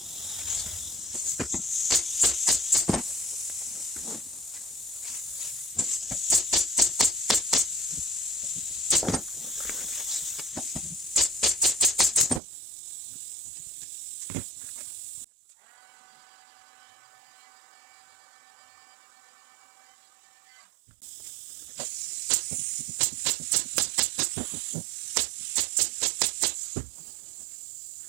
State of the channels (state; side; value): drops out; left; at 12.4 s